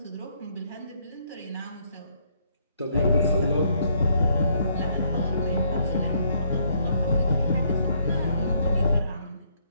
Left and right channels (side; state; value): both; inverted; correlation -0.70